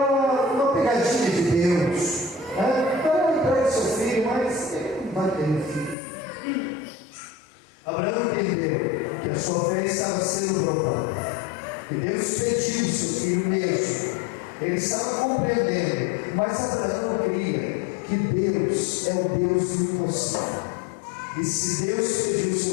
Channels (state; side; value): drops out; right; at 6.0 s